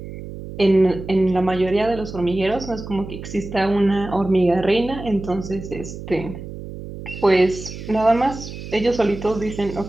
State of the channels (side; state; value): right; noise; hum, 11 dB below the sound